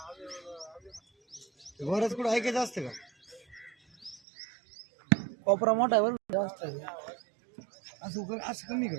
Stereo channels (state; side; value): drops out; left; at 4.2 s